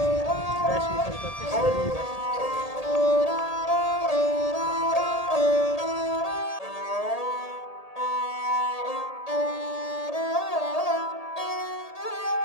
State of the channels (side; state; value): right; late; 1.8 ms